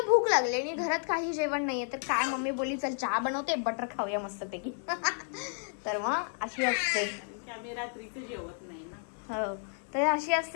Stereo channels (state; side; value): silent; right; 57 dB below the other